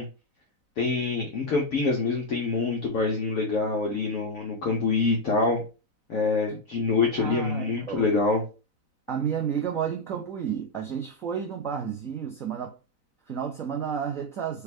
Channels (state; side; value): late; right; 4.0 ms